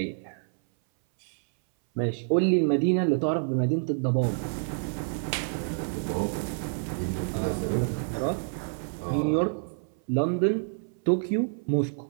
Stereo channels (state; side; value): silent; left; 59 dB below the other